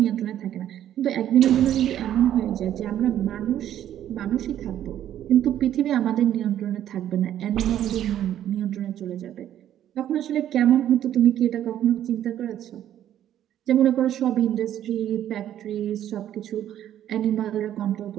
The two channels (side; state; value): left; quieter; 11.3 dB